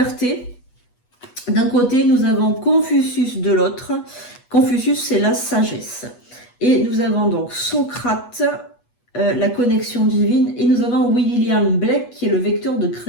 d'un côté, nous avons Confucius de l'autre. Confucius, c'est la sagesse. Et nous avons donc Socrate, la connexion divine. Et nous avons William Blake, qui est le vecteur de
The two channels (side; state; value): right; late; 8.2 ms